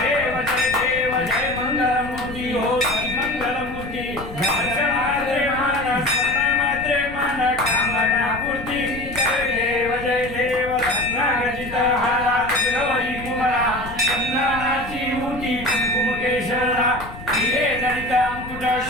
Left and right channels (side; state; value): left; noise; rumble, 13 dB below the sound